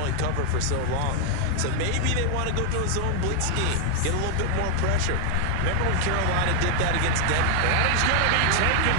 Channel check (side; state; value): both; different; correlation 0.00